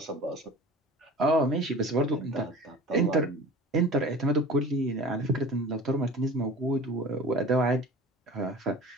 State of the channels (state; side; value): normal; both; correlation 0.41